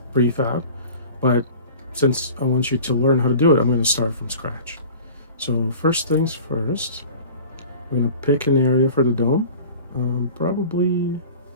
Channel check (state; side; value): inverted; both; correlation -0.41